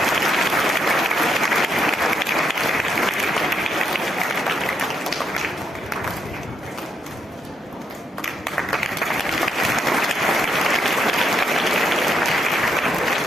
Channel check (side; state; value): both; normal; correlation 0.77